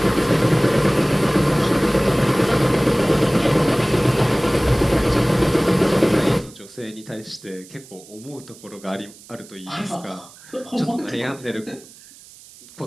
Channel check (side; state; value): right; noise; hiss, 22 dB below the sound